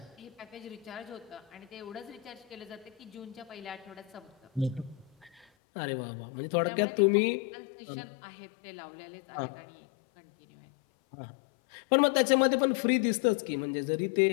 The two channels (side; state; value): right; drops out; at 5.5 s